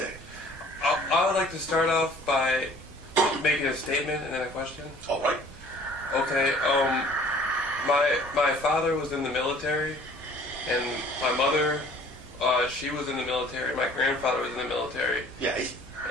I would like to start off by making a statement and then a question. All right. Okay. My father was in the military, and my mother, she was in the military. My grandfather was in the military. Yes.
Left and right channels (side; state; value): both; normal; correlation 0.53